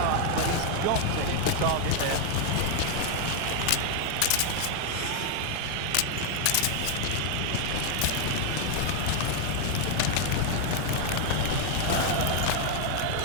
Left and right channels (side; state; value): both; different; correlation 0.00